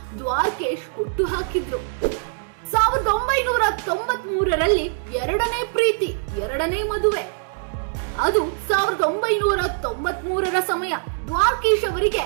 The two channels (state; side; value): silent; left; digital silence